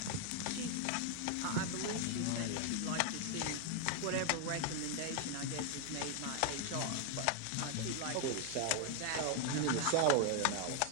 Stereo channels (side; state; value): both; different; correlation 0.00